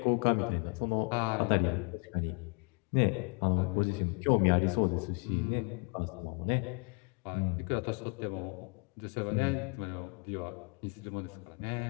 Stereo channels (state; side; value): quieter; right; 34.3 dB